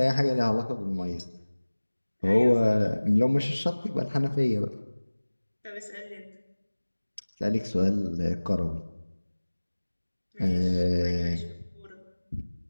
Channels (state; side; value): inverted; both; correlation -1.00